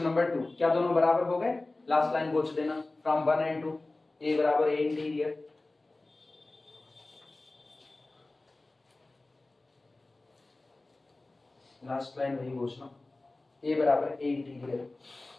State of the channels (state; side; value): quieter; right; 3.0 dB